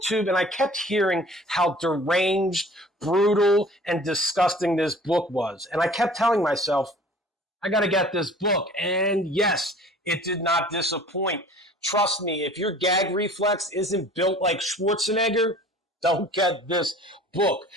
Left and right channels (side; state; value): both; normal; correlation 0.47